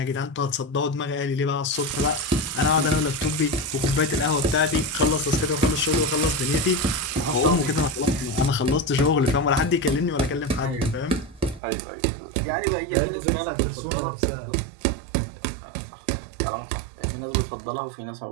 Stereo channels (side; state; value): left; drops out; at 11.6 s